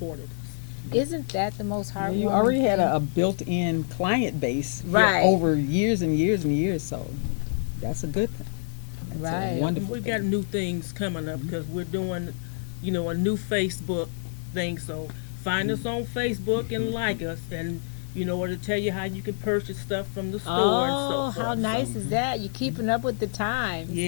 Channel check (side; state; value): right; silent; 60 dB below the other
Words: us. Isn't that the most heartwarming You already had thing? a built-in client base Right. over years and years and years, so that's a good thing. That's Right. a wonderful We've thing. got new things coming up because we're doing, a new Facebook thing. So find us on Facebook and like us, and or to tell you how you can purchase stuff from the store and Oh, so forth. how nice So, is that? You're keeping up with the times.